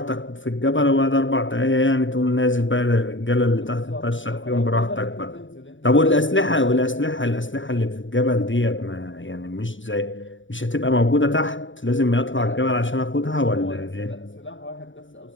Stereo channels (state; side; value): late; right; 0.56 ms